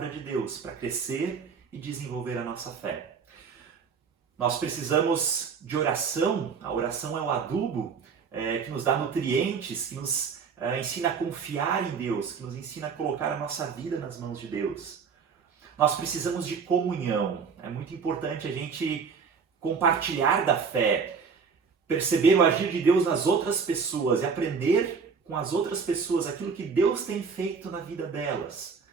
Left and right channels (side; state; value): left; quieter; 5.7 dB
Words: de Deus para crescer e desenvolver a nossa fé. Nós precisamos de oração. A oração é o adubo que nos dá nutrientes, que nos ensina a confiar em Deus, que nos ensina a colocar a nossa vida nas mãos de Deus. Nós precisamos de comunhão. É muito importante a gente compartilhar da fé, perceber o agir de Deus nas outras pessoas e aprender com as outras pessoas aquilo que Deus tem feito na vida delas.